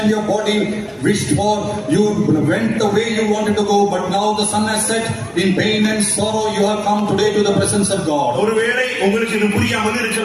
your body wished for. You went the way you wanted to go, but now the sun has set. In pain and sorrow, you have come today to the presence of God. ഒരുവേളை உங்களுக்கு ഇത് புரியாமல்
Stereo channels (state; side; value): identical; both; correlation 1.00